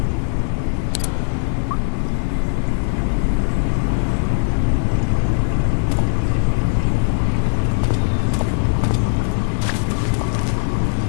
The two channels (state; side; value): silent; right; 66 dB below the other